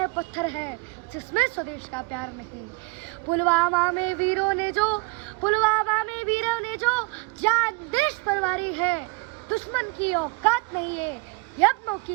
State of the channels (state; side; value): quieter; left; 27.3 dB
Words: पत्थर है, जिसमें स्वदेश का प्यार नहीं। पुलवामा में वीरों ने जो, पुलवामा में वीरों ने जो जान देश पर वारी है, दुश्मन की औकात नहीं है, यत्नों